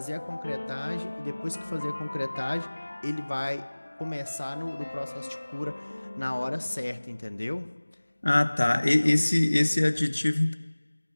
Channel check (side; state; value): both; inverted; correlation -1.00